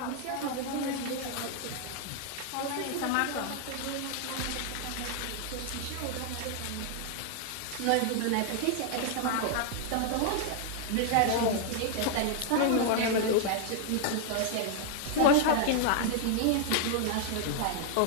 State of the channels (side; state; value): both; different; correlation 0.00